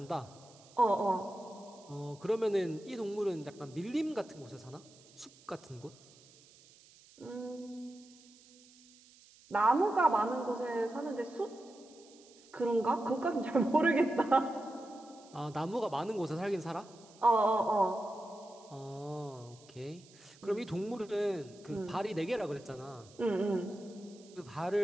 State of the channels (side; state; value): right; noise; hiss, 25 dB below the sound